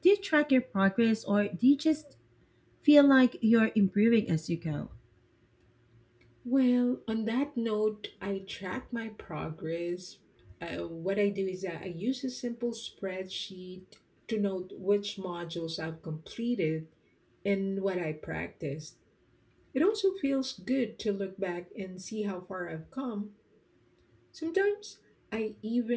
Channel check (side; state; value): both; identical; correlation 1.00